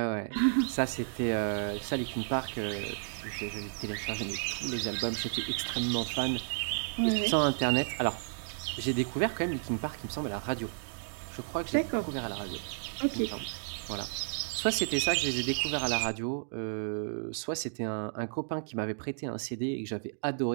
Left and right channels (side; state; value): left; silent; digital silence